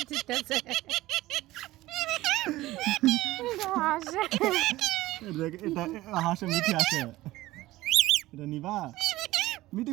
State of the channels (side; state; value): left; quieter; 17.3 dB